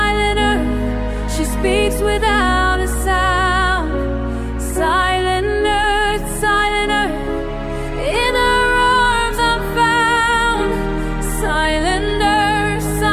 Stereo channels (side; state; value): both; identical; correlation 1.00